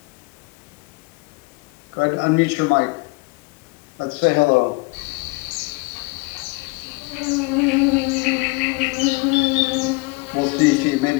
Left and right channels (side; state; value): right; quieter; 26.4 dB